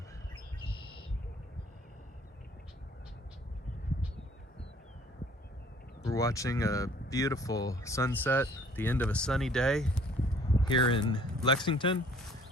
We're watching a beautiful sunset at the end of a sunny day here in Lexington.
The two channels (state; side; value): normal; both; correlation 0.56